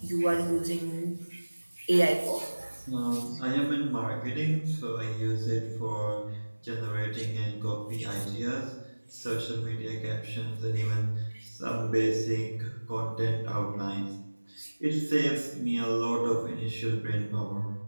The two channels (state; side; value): inverted; both; correlation -1.00